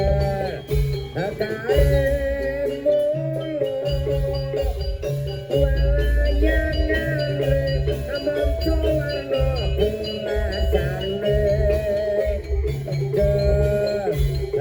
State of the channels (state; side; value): identical; both; correlation 1.00